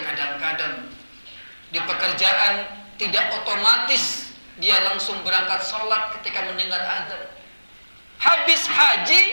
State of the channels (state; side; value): inverted; both; correlation -1.00